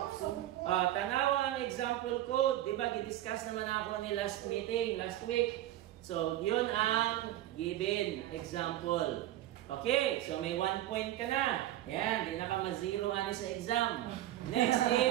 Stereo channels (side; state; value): left; quieter; 13.9 dB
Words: Tanawa ang example code. Diba, gidiscuss naman ako ni last meeting, last week. So, yun ang given example. Okay, so may 1 point ka na. Ayan, di na ka ma-zero ani sa exam. Next